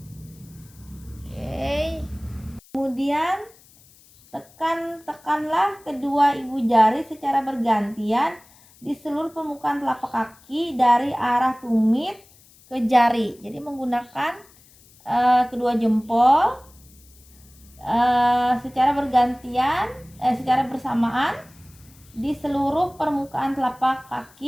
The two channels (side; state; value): left; noise; hiss, 27 dB below the sound